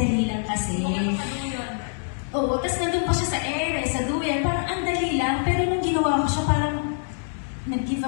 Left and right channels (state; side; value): silent; right; digital silence